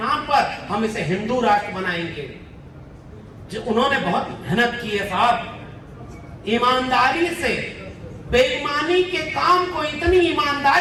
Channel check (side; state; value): both; identical; correlation 1.00